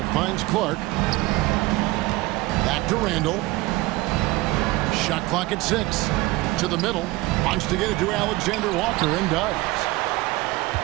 finds Clark. Back to Randall. Shot clock at 6. To the middle. Wants to get it to Alexander Walker and does.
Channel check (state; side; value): quieter; left; 20.3 dB